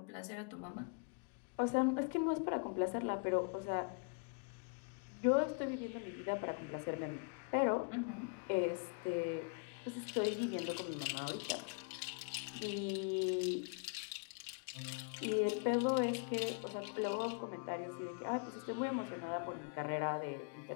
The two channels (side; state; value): right; quieter; 38.7 dB